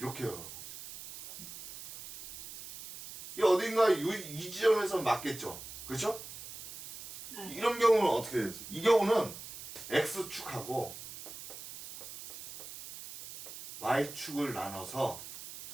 가고 있어. 이 어딘가 이 지점에서 맞겠죠, 그렇죠? 네. 이런 경우는 어떻게 되죠? 이 경우는 X축하고 Y축을 나눠서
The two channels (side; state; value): right; noise; hiss, 12 dB below the sound